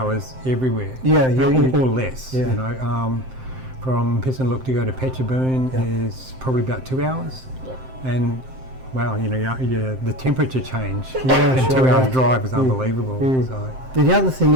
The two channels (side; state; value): left; late; 7.7 ms